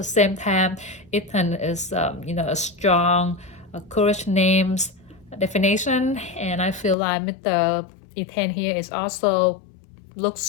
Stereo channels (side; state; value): right; drops out; at 7.0 s